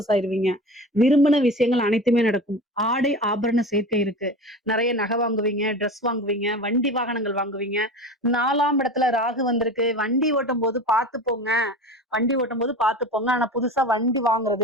ஆயிருவீங்க. விரும்பின விஷயங்கள் அனைத்துமே நடக்கும். ஆடை ஆபரண சேர்க்கை இருக்கு. நிறைய நகை வாங்குவீங்க, ட்ரெஸ் வாங்குவீங்க, வண்டி வாகனங்கள் வாங்குவீங்க. 4ஆம் இடத்துல ராகு வந்திருக்கு. வண்டி ஓட்டும் போது பார்த்து போங்க. ஆனா புதுசா வண்டி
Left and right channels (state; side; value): normal; both; correlation 0.32